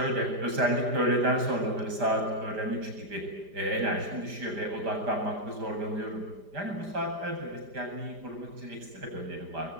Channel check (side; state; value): left; late; 5.1 ms